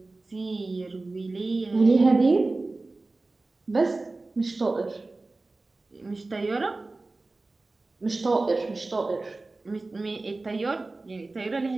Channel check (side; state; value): left; quieter; 3.3 dB